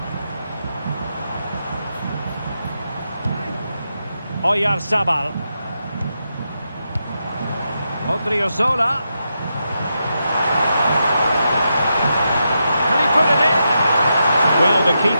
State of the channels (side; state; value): both; inverted; correlation -0.85